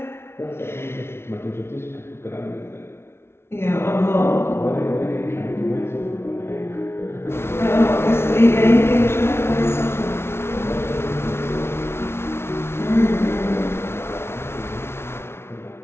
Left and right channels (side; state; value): right; late; 0.12 ms